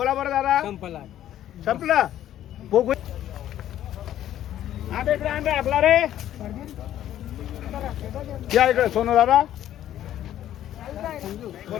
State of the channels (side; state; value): right; quieter; 12.0 dB